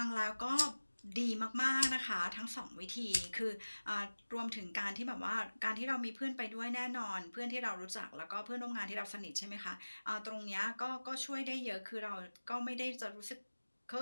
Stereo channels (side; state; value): both; inverted; correlation -1.00